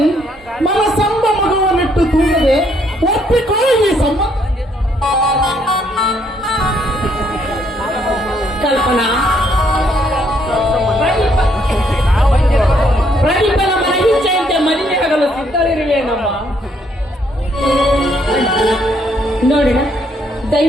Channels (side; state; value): both; normal; correlation 0.70